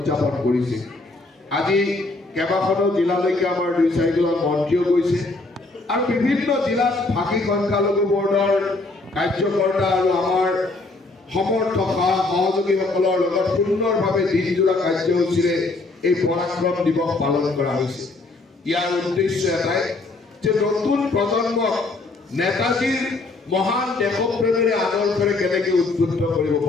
কৰিছে। আজি কেইবাখনো জিলালৈকে আমাৰ 2-4 জন মন্ত্ৰীও গৈছে আৰু বিভিন্ন জিলাত ভাষী সংখ্যালঘু বৰ্ডৰ কাৰ্যকৰ্তা আৰু আমাৰ সমৰ্থক সহযোগীসকলৰ লগত সুন্দৰভাৱে দিনজোৰা কাৰ্যসূচীৰে এই পৰাক্ৰম দিৱস পালন কৰা হৈছে। ইয়াৰ উদ্দেশ্য এটাই যে নতুন প্ৰজন্মক নেতাজীৰ মহান দেশপ্ৰেমেৰে আদৰ্শৰে কেনেকৈ উদ্বুদ্ধ কৰিব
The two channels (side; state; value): right; quieter; 3.3 dB